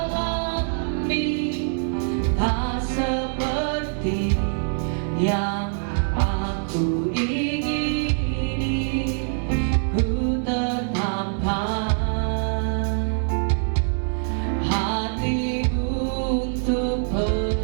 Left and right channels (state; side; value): silent; left; 62 dB below the other